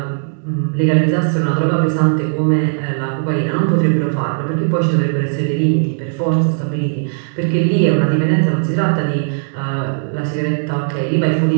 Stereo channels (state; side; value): silent; left; digital silence